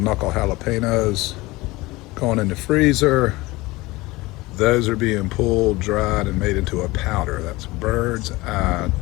jalapenos going in the freezer. Those are being pulled, dried, and made into a powder. That's bird's eye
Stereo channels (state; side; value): quieter; right; 21.1 dB